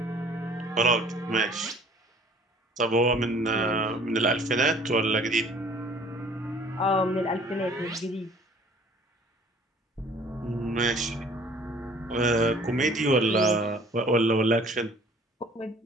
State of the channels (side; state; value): both; normal; correlation 0.53